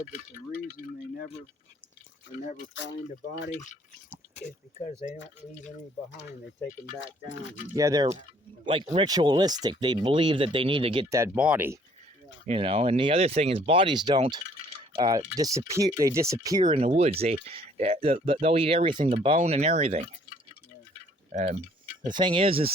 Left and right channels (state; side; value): normal; both; correlation 0.60